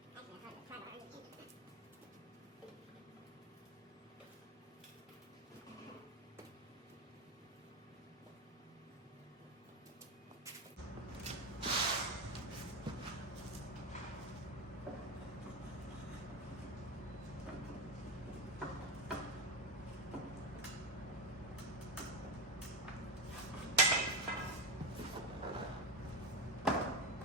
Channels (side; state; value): both; normal; correlation 0.13